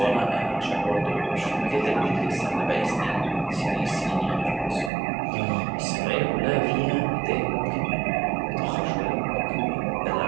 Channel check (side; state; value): left; drops out; at 4.9 s